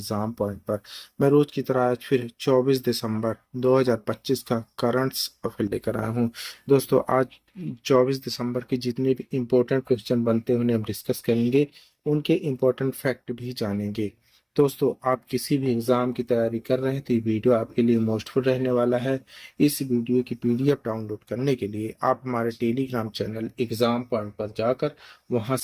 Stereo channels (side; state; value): both; identical; correlation 1.00